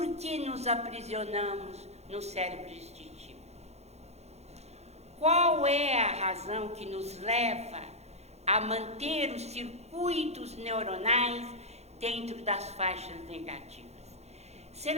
que nos aprisionamos no cérebro instintivo. Qual é a razão que nos leva a manter os circuitos neuronais dentro das faixas negativas?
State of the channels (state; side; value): late; left; 0.31 ms